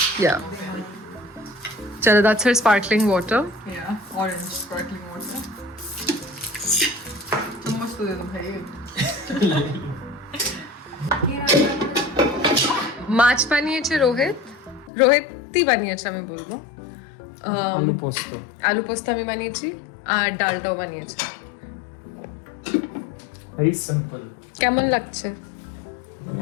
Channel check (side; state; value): right; drops out; at 14.9 s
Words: Yeah. Chalo, that's her sparkling water. Yeah, orange sparkling water. चम्मच तो दे दो भाई। মাছ বানিয়েছে রোহিতই বানিয়েছে আমি বলবো आलू पोस्तो। আলু পোস্ত আমি বানিয়েছি আর ডালটাও বানিয়েছে Very simple. কেমন লাগছে